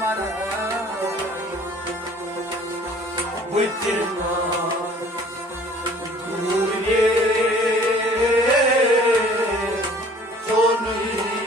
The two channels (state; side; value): normal; both; correlation 0.52